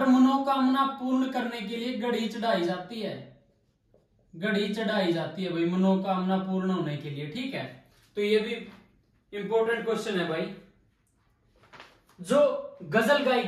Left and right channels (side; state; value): both; identical; correlation 1.00